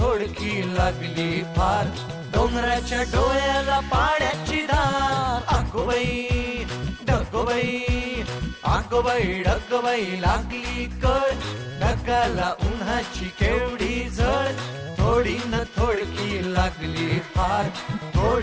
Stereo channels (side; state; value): both; identical; correlation 1.00